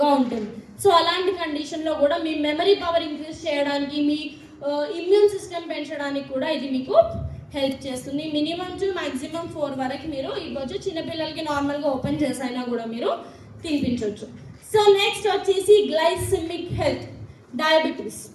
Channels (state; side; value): identical; both; correlation 1.00